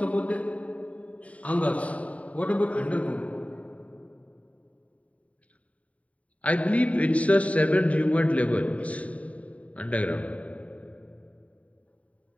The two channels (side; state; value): right; late; 0.067 ms